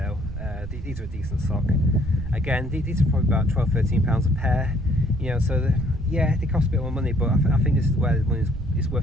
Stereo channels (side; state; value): right; noise; rumble, 10 dB below the sound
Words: These are a decent sock. Again, these are probably about £12–13 a pair. You know, so yeah, they cost a bit more money, but I think this is where the money is